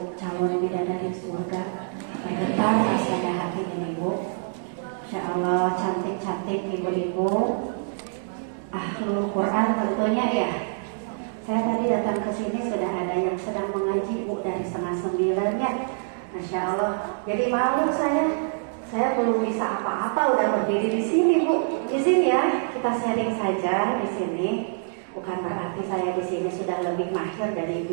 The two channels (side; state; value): left; silent; digital silence